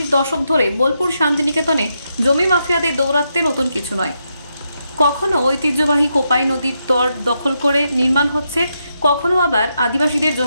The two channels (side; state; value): both; inverted; correlation -0.83